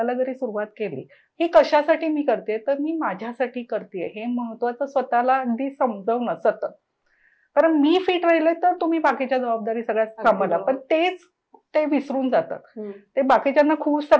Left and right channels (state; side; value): identical; both; correlation 1.00